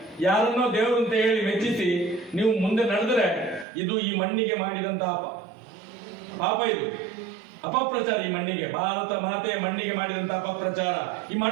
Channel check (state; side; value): drops out; left; at 3.7 s